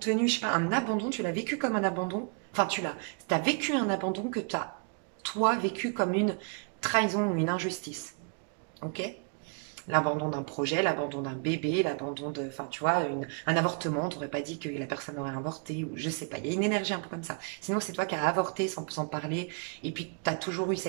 je sais pas, un abandon, tu l'as vécu comme un abandon. Enfin, t'as vécu un abandon que t'as, toi, vécu comme une trahison ou une injustice. Ok? L'abandon d'un projet, l'abandon d'un bébé, l'abandon de, enfin, tu vois, un avortement. T'aurais pas dit que la personne aurait avorté ou je sais pas. Il y a une énergie un peu comme ça. Sinon, c'est toi qui as avorté sans parler et puis tu as toujours eu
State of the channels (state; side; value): quieter; left; 38.3 dB